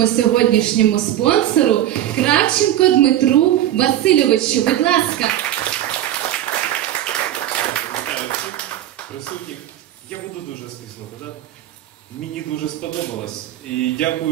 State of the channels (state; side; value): quieter; left; 12.5 dB